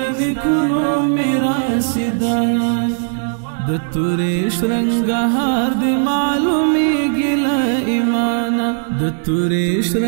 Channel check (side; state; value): left; silent; digital silence